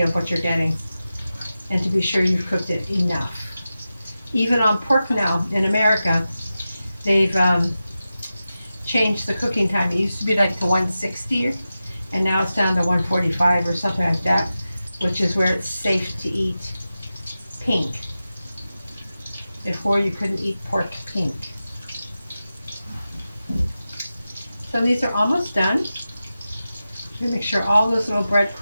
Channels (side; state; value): both; inverted; correlation -0.93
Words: what you're getting, and to be sure you've cooked it enough. Even on pork now in America, they've changed the cooking time. It used to be like to 160, and now it's down to 145 or something like that. which is where it's safe to eat pink. Before you couldn't eat pork pink. So these are almost done. Make sure all those little